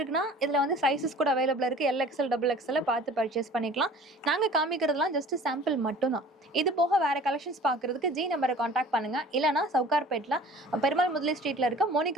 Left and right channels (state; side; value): normal; both; correlation 0.46